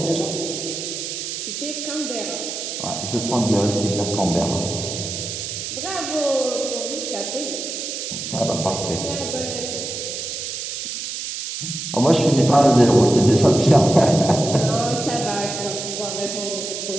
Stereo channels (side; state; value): right; noise; hiss, 5 dB below the sound